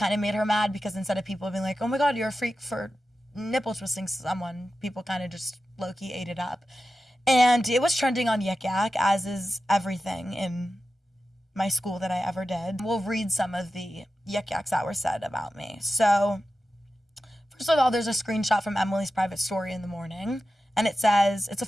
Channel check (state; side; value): normal; both; correlation 0.93